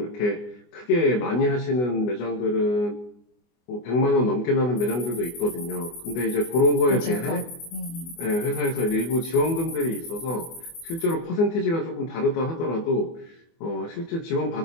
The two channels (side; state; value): right; late; 24 ms